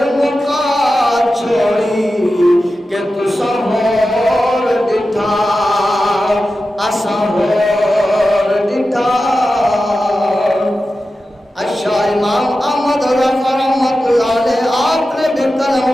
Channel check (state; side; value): normal; both; correlation 0.93